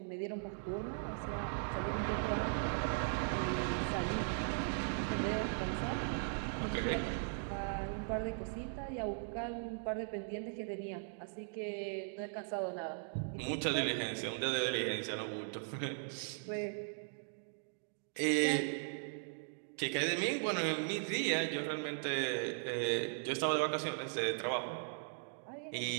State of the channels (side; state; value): left; silent; digital silence